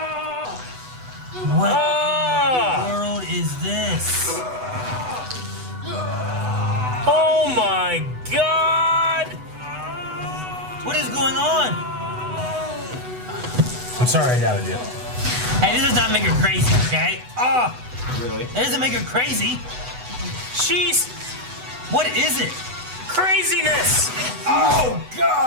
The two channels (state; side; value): late; left; 8.0 ms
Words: What world is this? Oh my God! What is going on? I'm sorry I doubted you. Hey, this does not make her crazy, okay? Oh, Really? that doesn't make her crazy. She's What is it? craziness! Oh